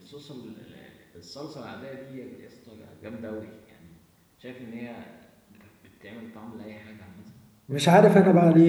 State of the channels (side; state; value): both; identical; correlation 1.00